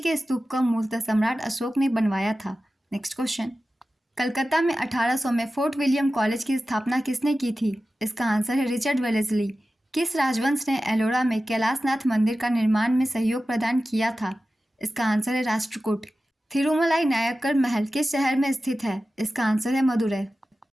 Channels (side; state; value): both; normal; correlation 0.94